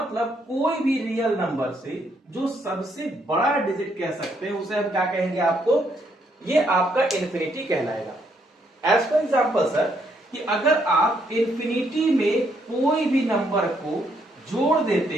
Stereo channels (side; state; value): both; normal; correlation 0.73